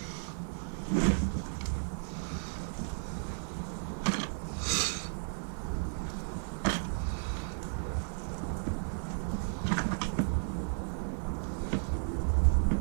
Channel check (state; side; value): silent; left; digital silence